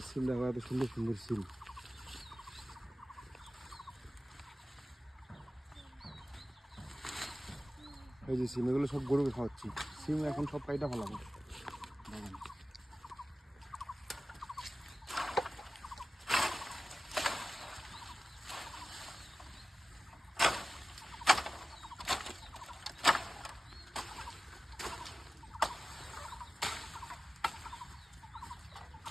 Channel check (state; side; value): normal; both; correlation 0.96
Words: সিম দেখো, এত সুন্দর সুন্দর সিম। এই যে সিম, এগুলো সব গরুকে খাওয়াচ্ছি। সিম এখন সব কাইটা ফেলাবো বাগান।